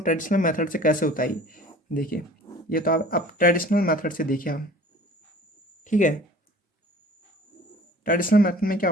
ट्रेडिशनल मेथड से कैसे होता है ये। देखिए ये तो आप ट्रेडिशनल मेथड से देखिए आप। ठीक है, ट्रेडिशनल मेथड में क्या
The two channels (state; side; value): normal; both; correlation 0.47